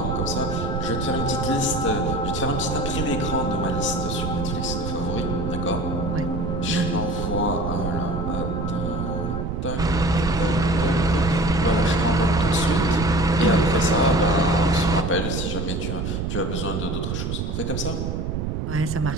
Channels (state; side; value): noise; right; rumble, 2 dB below the sound